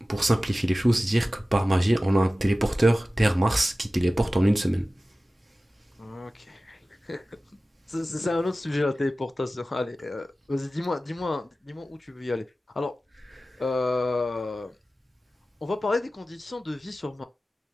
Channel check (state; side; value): normal; both; correlation 0.96